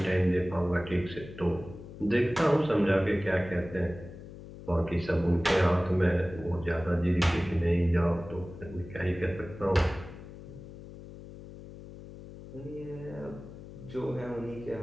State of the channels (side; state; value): left; noise; hum, 15 dB below the sound